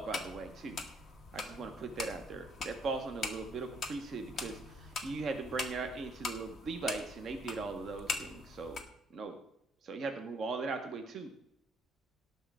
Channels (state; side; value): normal; both; correlation 0.67